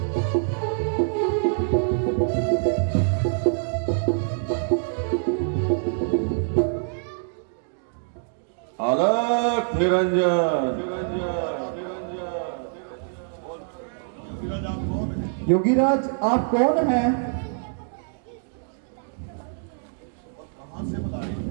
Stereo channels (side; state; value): left; silent; digital silence